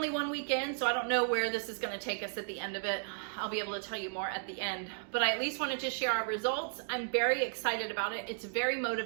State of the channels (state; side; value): silent; left; digital silence